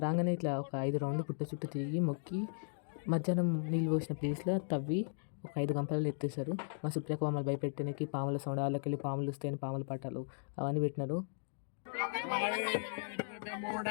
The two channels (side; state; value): right; silent; digital silence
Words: రాగానే ఇట్లా ఒక 5 రౌండ్లు పుట్ట చుట్టూ తిరిగి మొక్కి మధ్యాహ్నం నీళ్ళు పోసిన ప్లేస్లో తవ్వి ఒక 5 గంపలలో ఎత్తేసారు. మా సుప్రియకు మమ్మల్ని భయపెట్టడానికి పాముల సౌండ్, వాళ్ళకి వెళ్ళి పాములు వస్తాయని పాముల పట్టాలు అవన్నీ పెట్టినారు.